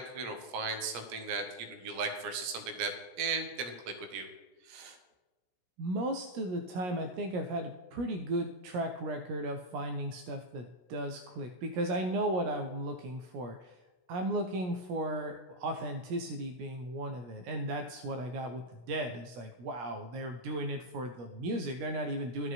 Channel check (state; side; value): late; left; 17 ms